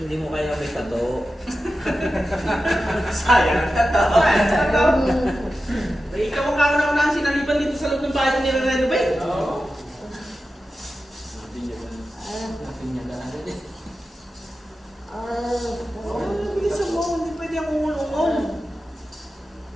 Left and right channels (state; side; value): normal; both; correlation 0.92